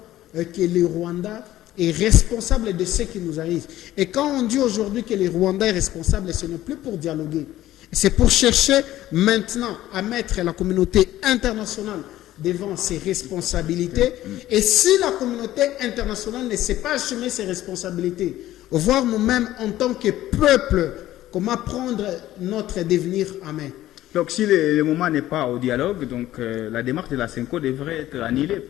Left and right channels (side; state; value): right; quieter; 14.4 dB